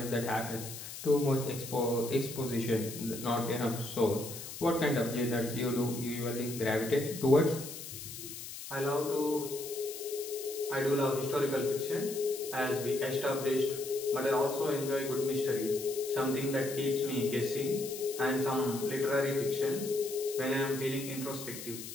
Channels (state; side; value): noise; left; hiss, 10 dB below the sound